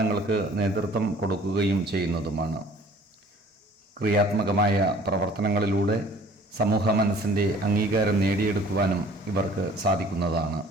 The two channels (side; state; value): both; normal; correlation 0.52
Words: നേതൃത്വം കൊടുക്കുകയും ചെയ്യുന്നതുമാണ്. ക്രിയാത്മകമായ പ്രവർത്തനങ്ങളിലൂടെ സമൂഹ മനസ്സിൻ്റെ അംഗീകാരം നേടിയെടുക്കുവാനും ഇവർക്ക് സാധിക്കുന്നതാണ്.